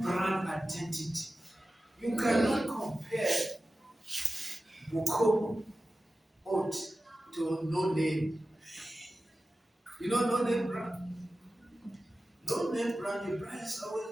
brand identity. You cannot compare Bukomo oat to no name. You know no name brand? No name brand, the brand is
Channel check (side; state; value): both; normal; correlation 0.94